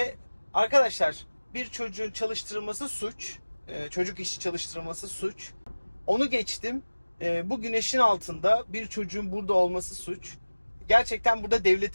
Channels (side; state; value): both; inverted; correlation -1.00